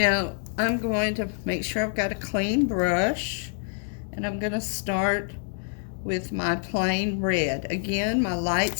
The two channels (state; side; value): silent; right; digital silence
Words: I'm going to make sure I've got a clean brush, and I'm going to start with my plain red. Again, my light